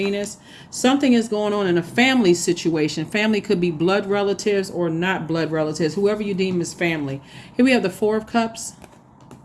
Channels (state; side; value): identical; both; correlation 1.00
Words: Something is going on in a family situation. Family could be blood relatives or not blood relatives, whoever you deem as family. Here we have the Four of Cups,